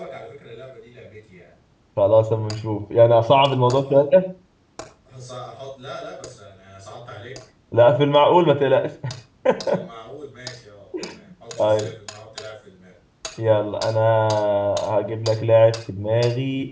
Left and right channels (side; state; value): both; identical; correlation 1.00